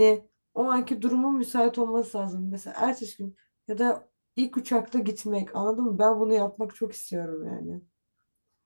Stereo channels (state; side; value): inverted; both; correlation -1.00